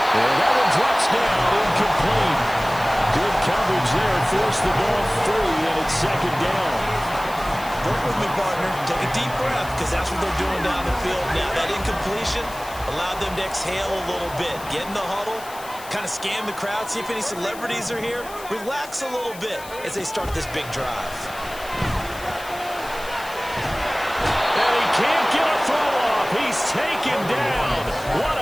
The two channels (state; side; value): noise; left; hiss, 17 dB below the sound